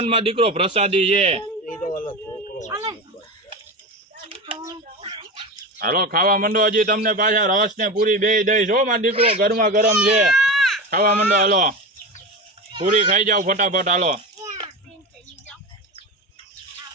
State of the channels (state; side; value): normal; both; correlation 0.24